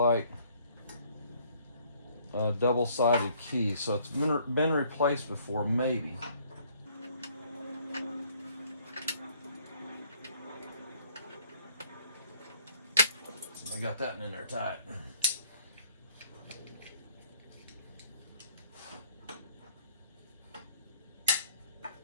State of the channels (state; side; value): inverted; both; correlation -0.61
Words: a double-sided key, so it's been replaced before, maybe. I got that in there tight.